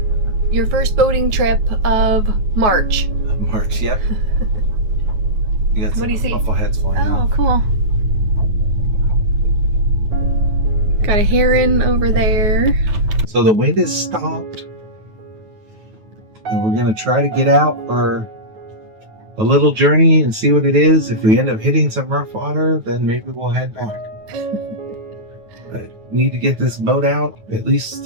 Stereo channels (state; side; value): late; left; 9.3 ms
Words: your first boating trip of March. March, yep. You got What do you see? buffleheads flying Oh, off. cool. Got a heron over there. So the wind is stopped. And we're going to try to get out for a little journey and see what it is. If we end up hitting some rough water, then maybe we'll head back. But need to get this boat out at least